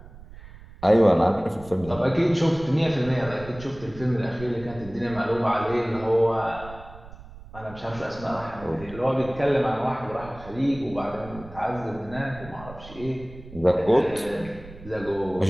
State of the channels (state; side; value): noise; right; rumble, 17 dB below the sound